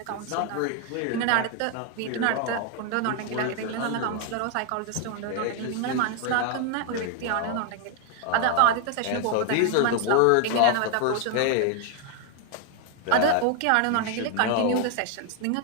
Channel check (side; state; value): both; different; correlation 0.00